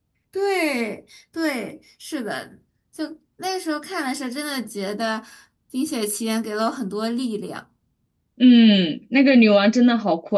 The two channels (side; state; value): both; identical; correlation 1.00